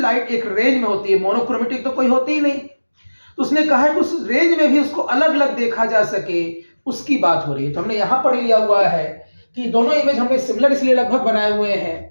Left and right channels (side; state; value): both; inverted; correlation -1.00